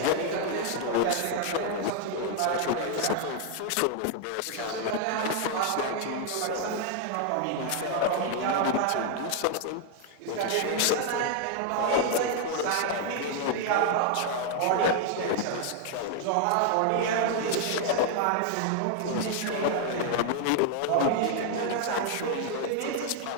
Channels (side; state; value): both; different; correlation 0.00